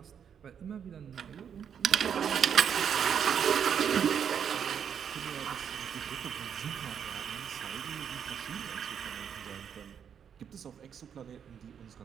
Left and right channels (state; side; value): quieter; left; 7.9 dB